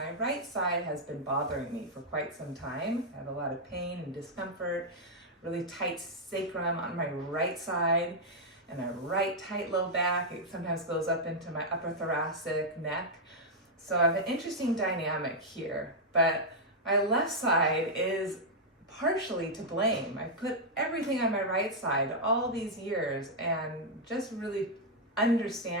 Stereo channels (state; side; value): normal; both; correlation -0.04